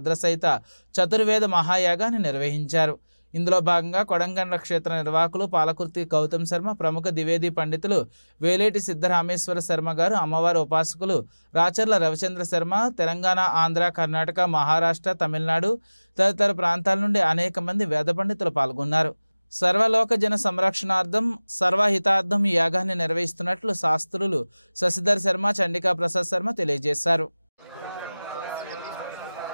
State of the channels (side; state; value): both; inverted; correlation -0.99